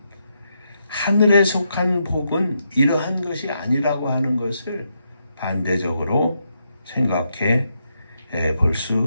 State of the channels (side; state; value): both; inverted; correlation -0.81